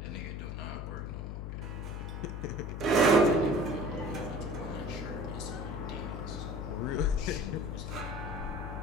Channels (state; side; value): noise; left; hum, 5 dB below the sound